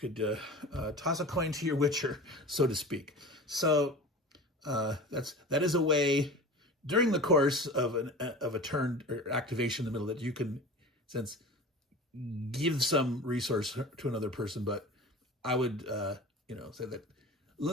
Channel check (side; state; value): both; normal; correlation 0.36